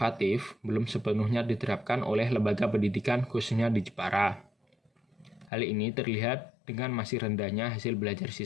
belum sepenuhnya diterapkan oleh lembaga pendidikan khususnya di Jepara. Hal ini terlihat dengan masih rendahnya hasil belajar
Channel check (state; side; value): drops out; right; at 5.5 s